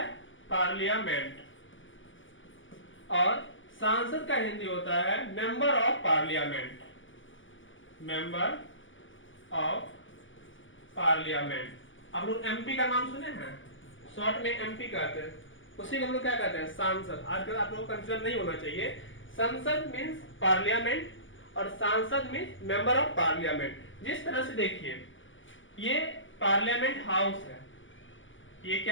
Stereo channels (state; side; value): late; right; 0.56 ms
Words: पार्लियामेंट। और सांसद का हिंदी होता है member of parliament. Member of parliament. आप लोग एमपी का नाम सुने हैं, शॉर्ट में एमपी कहते हैं, उसी को हम लोग क्या कहते हैं? सांसद। आजकल आप लोगों को कंफ्यूजन नहीं होना चाहिए। संसद मींस पार्लियामेंट और सांसद मींस मेंबर ऑफ पार्लियामेंट। जिस तरह से देखिए, ये पार्लियामेंट हाउस है, ये